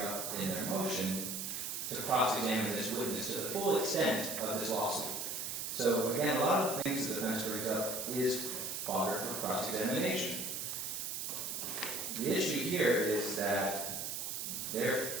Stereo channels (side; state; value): right; noise; hiss, 3 dB below the sound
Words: in their motion, to cross-examine this witness to the full extent of this lawsuit. So again, a lot of the things the defense brings up is fodder for cross-examination. The issue here is that they're